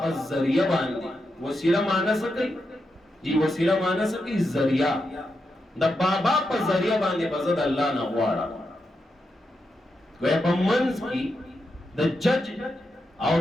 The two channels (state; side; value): normal; both; correlation 0.85